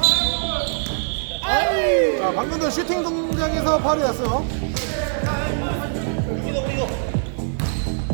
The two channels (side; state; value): left; silent; digital silence